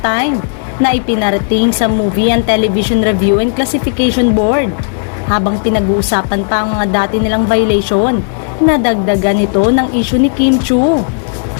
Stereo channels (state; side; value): silent; right; digital silence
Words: na ipinarating sa Movie and Television Review and Classification Board. Habang pinag-uusapan pa ang mga dati nilang violation, nadagdagan ito ng issue ni Kim Chiu.